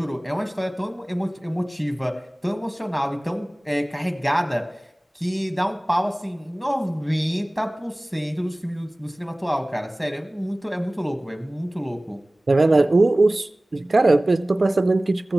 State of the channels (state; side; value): normal; both; correlation 0.98